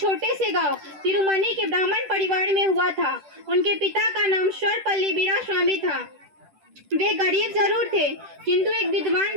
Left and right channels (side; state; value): left; late; 10 ms